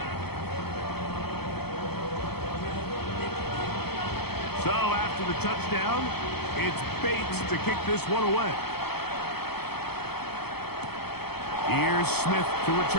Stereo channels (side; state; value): right; late; 0.96 ms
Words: So after the touchdown, it's Bates to kick this one away. Here's Smith to